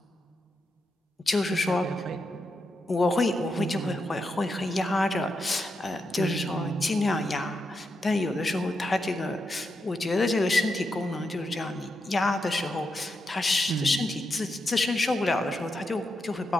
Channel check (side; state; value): both; normal; correlation 0.85